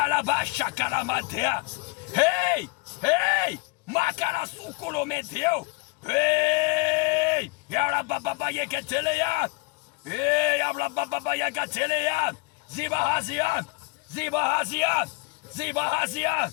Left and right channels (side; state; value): right; quieter; 27.6 dB